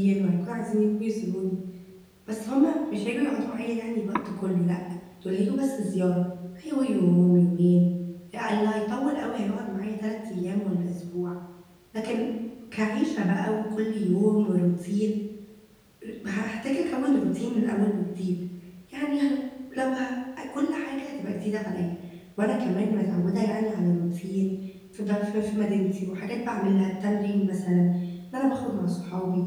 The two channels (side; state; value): both; identical; correlation 1.00